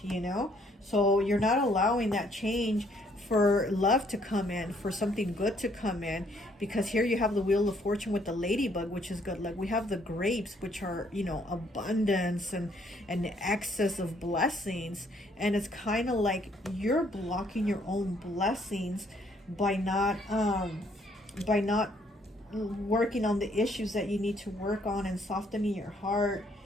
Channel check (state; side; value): normal; both; correlation 0.66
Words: you know. So you're not allowing that change for love to come in, for something good to come in. Because here you have the Wheel of Fortune with the ladybug, which is good. Like we have the grapes, which are, you know, abundance and excess of blessings. And it's kind of like you're blocking your own blessings by not working on the issues that you need to work on, and softening your heart